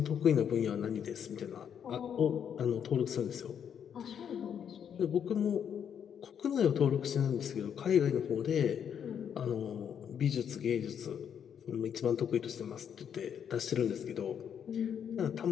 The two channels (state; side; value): quieter; right; 8.3 dB